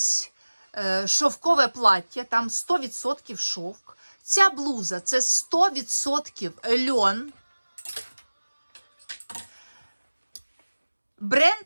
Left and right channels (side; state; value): both; inverted; correlation -1.00